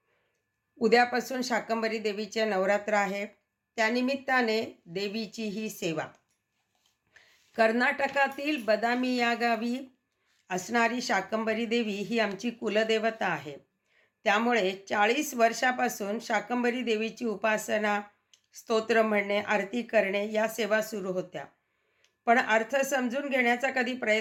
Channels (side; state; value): both; identical; correlation 1.00